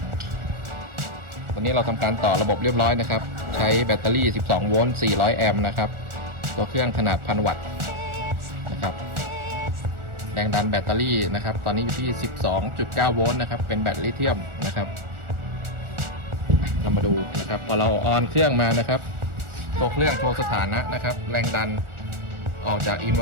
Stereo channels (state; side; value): late; left; 1.4 ms